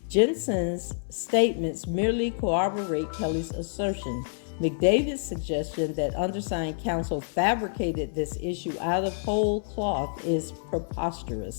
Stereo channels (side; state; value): right; silent; 60 dB below the other